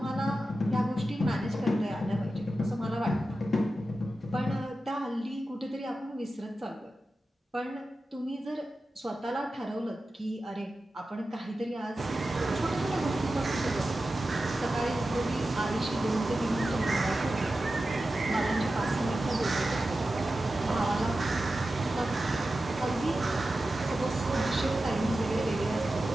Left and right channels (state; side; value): normal; both; correlation 0.93